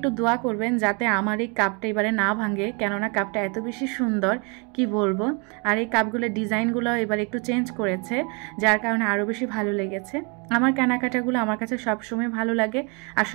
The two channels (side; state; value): left; quieter; 33.2 dB